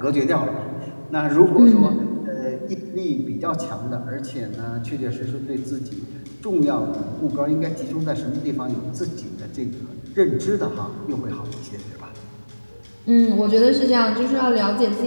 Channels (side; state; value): both; inverted; correlation -1.00